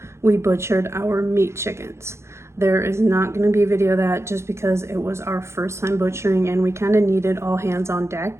we butchered our meat chickens. There is not going to be a video of that just because it was our first time butchering and we kind of needed all hands on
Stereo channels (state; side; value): late; left; 0.13 ms